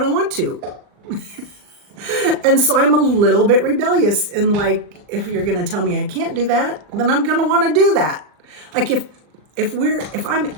want to. And so I'm a little bit rebellious, and like, if you're going to tell me I can't do that, then I'm going to want to do that. Like if I'm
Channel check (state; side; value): late; left; 39 ms